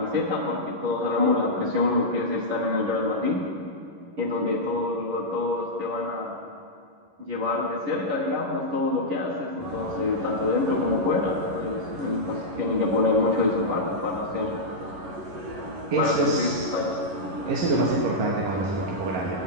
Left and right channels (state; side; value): late; left; 11 ms